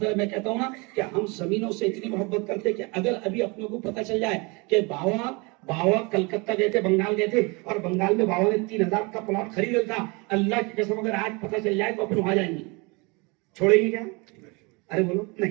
है, मैं कहता हूं ना कि हम जमीनों से इतनी मोहब्बत करते कि अगर अभी अपनों को पता चल जाए कि बाबा कलकत्ता गए थे, बंगाल गए थे, और बंगाल में बाबा ने 3000 का प्लॉट खरीदा था, अल्लाह की कसम अगर आज पता चल जाए तो अपन वहां जाएंगे, छोड़ेंगे क्या? अरे बोलो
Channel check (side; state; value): left; quieter; 28.2 dB